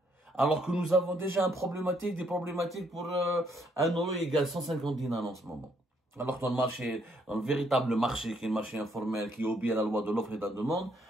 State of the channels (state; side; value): normal; both; correlation 0.70